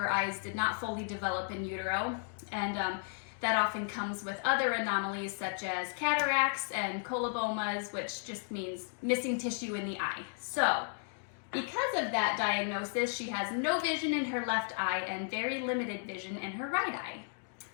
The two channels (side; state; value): right; silent; 55 dB below the other